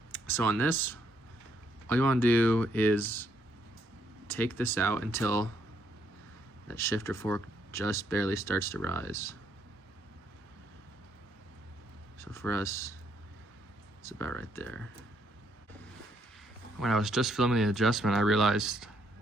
So on this, all you wanna do is take this out until that shifter fork just barely starts to rise. So for us, it's about right there. When I was just filming the adjustment, I realized,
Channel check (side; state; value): both; normal; correlation 0.72